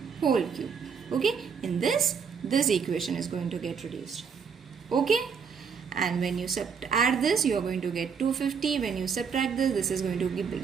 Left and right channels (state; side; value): quieter; left; 6.4 dB